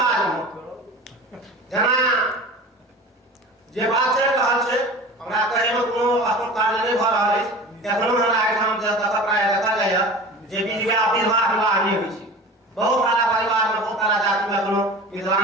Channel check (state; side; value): normal; both; correlation 0.36